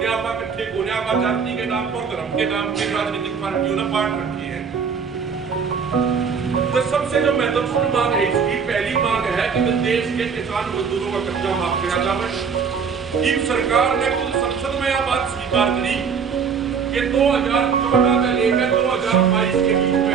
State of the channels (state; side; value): quieter; left; 6.3 dB